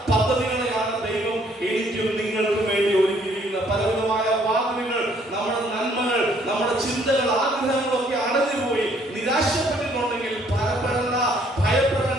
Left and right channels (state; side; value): normal; both; correlation 0.64